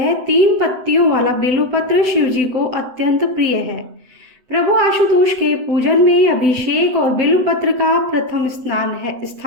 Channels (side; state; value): left; late; 7.9 ms